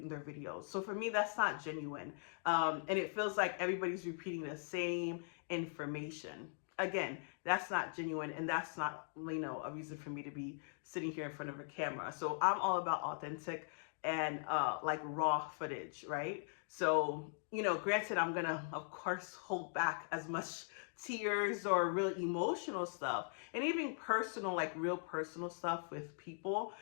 videos. So for me, that's not genuine. And it feels like everybody's repeating the same information. Again, that's not genuine, and that's not, a reason for me to be sitting here in front of a camera. So I'm all about authentic and like raw footage, right? So, granted, I'm gonna, of course, hold back as much tears or real emotional stuff, and even personal, like real personal stuff with people.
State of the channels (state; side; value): silent; right; digital silence